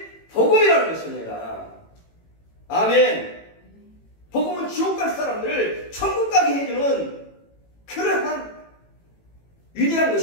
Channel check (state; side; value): late; right; 18 ms